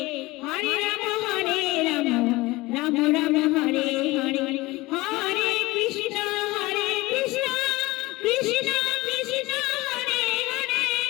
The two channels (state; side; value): quieter; right; 20.9 dB